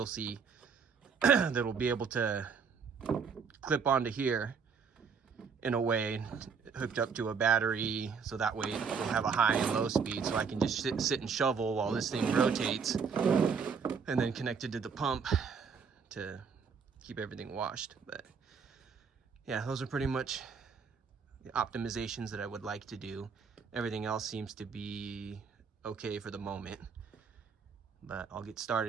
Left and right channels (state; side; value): quieter; left; 5.9 dB